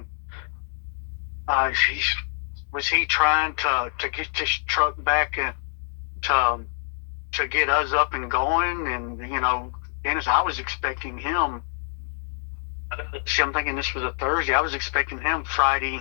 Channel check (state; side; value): silent; right; 61 dB below the other